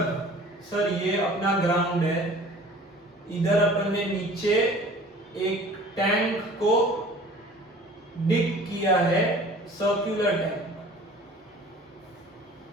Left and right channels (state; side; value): normal; both; correlation 0.47